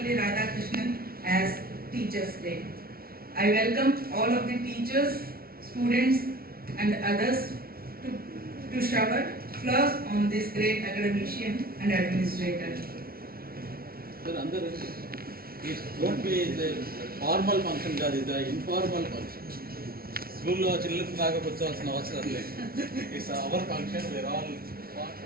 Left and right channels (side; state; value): left; late; 0.44 ms